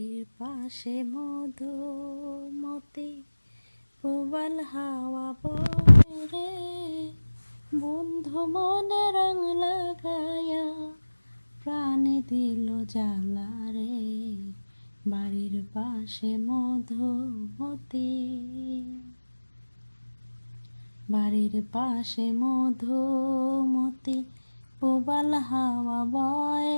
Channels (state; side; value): inverted; both; correlation -1.00